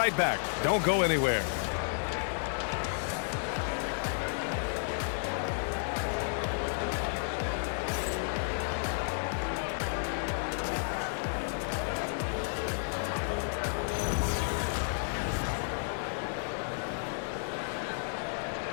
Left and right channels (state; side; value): silent; right; 56 dB below the other